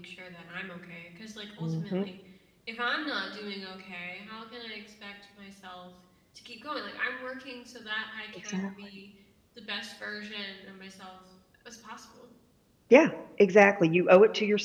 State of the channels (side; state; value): both; identical; correlation 1.00